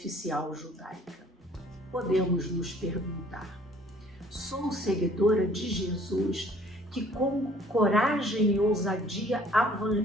judaica. Podemos nos perguntar: sou seguidora de Jesus que, com coragem e ousadia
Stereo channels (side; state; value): both; normal; correlation 0.56